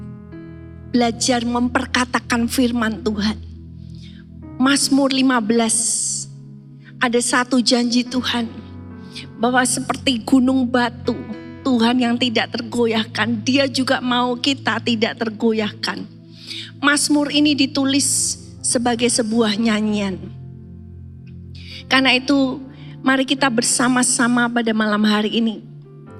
belajar memperkatakan firman Tuhan. Mazmur 15. Ada satu janji Tuhan. Bahwa seperti gunung batu. Tuhan yang tidak tergoyahkan. Dia juga mau kita tidak tergoyahkan. Mazmur ini ditulis sebagai sebuah nyanyian. Karena itu mari kita bersama-sama pada malam hari ini.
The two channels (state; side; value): identical; both; correlation 1.00